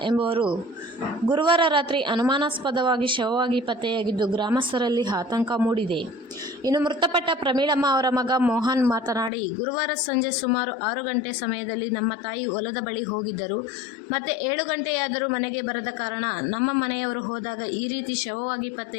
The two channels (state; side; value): drops out; right; at 9.3 s